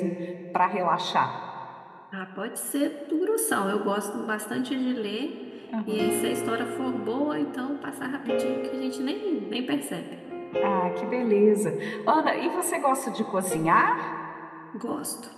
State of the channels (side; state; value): both; identical; correlation 1.00